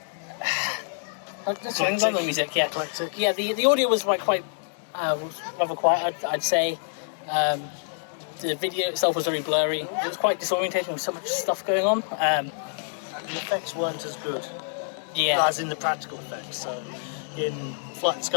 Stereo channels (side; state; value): right; silent; digital silence